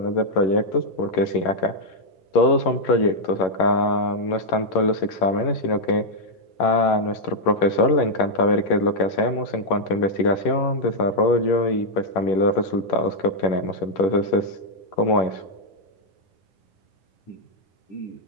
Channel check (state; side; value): late; right; 11 ms